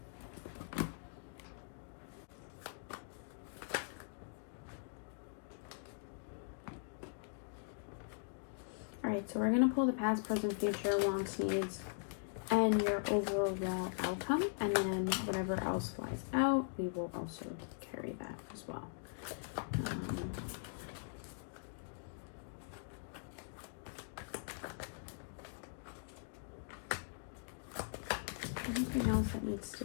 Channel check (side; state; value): right; silent; digital silence